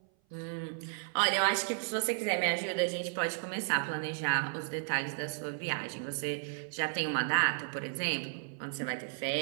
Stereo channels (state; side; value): silent; left; 55 dB below the other